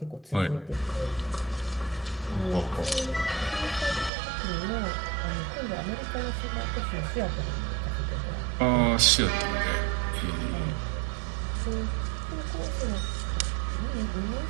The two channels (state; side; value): drops out; left; at 4.1 s